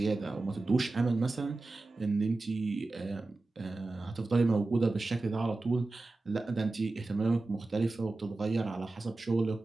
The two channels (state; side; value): quieter; left; 3.2 dB